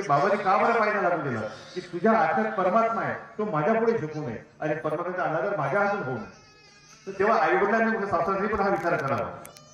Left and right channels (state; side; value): identical; both; correlation 1.00